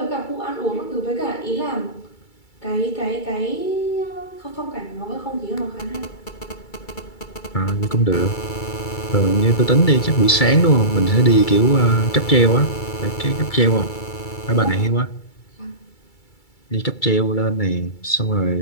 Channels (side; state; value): right; late; 2.3 ms